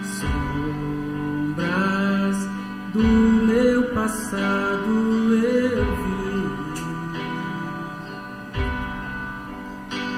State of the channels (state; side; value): identical; both; correlation 1.00